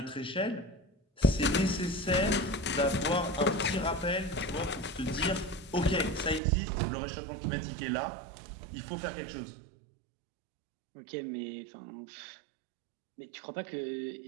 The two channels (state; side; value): drops out; left; at 6.4 s